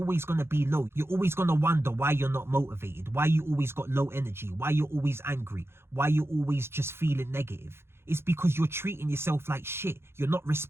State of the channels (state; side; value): late; left; 0.12 ms